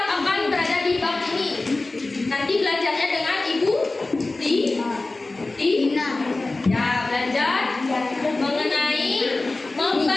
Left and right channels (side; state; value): right; quieter; 3.2 dB